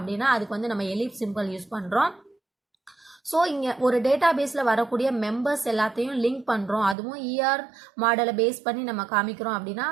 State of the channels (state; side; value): drops out; left; at 7.0 s